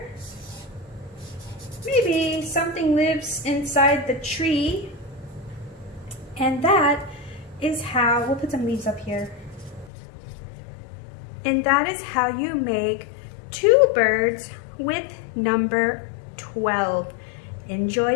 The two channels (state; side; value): drops out; right; at 9.9 s